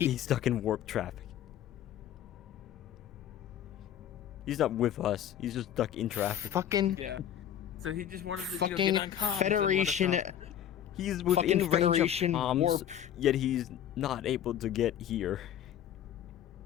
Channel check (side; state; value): right; quieter; 10.3 dB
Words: stuck in warp traffic. He's not with us. He's just stuck in traffic. Fucking Yeah. So he just wanted to fucking get on comms and let us Federation. know. He's fucking within range Federation of bombs, warp. yet he's not able to get here.